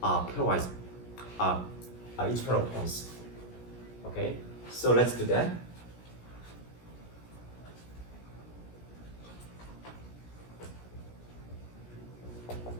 pairwise each pair of points. Okay, so let's do that.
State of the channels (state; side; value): late; right; 17 ms